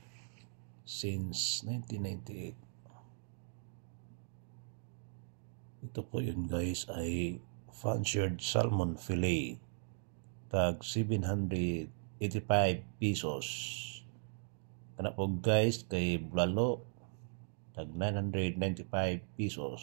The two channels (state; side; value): silent; left; digital silence